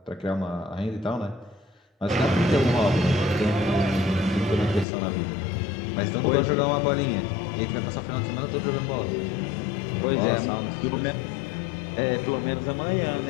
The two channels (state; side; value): drops out; right; at 4.9 s